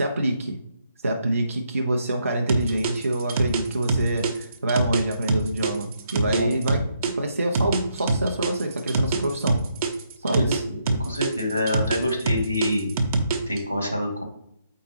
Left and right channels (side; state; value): both; inverted; correlation -0.77